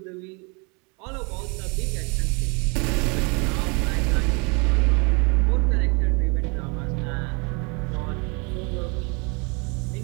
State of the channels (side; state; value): left; quieter; 31.5 dB